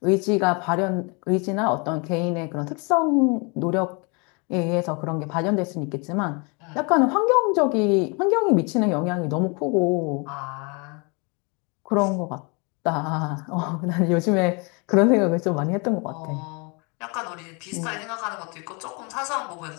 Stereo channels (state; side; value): quieter; right; 31.7 dB